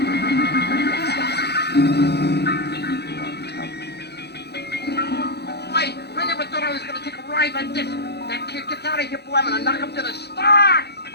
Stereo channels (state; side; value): late; right; 0.48 ms